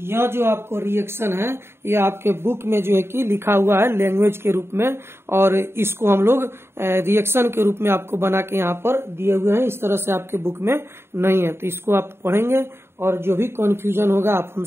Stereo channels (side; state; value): left; late; 0.12 ms